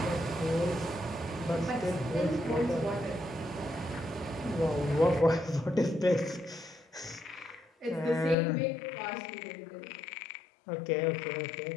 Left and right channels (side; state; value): right; drops out; at 8.3 s